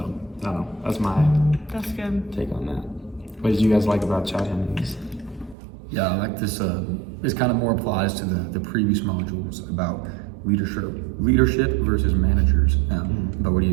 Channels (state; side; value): drops out; left; at 5.6 s